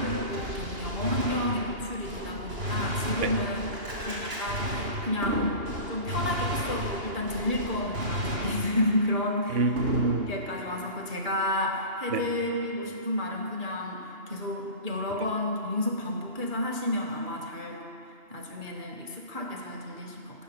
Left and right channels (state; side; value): late; left; 2.8 ms